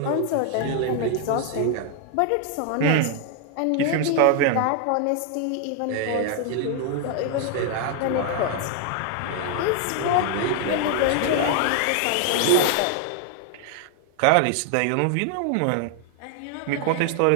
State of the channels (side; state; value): both; different; correlation 0.00